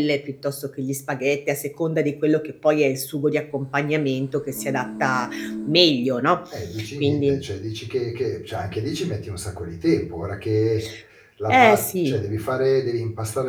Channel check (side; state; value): both; identical; correlation 1.00